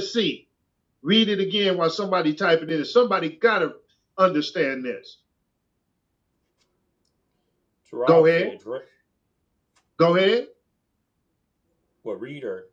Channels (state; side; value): identical; both; correlation 1.00